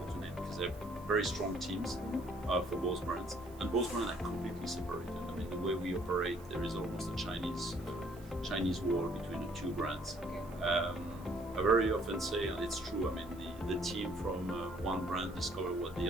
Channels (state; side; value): noise; right; hiss, 24 dB below the sound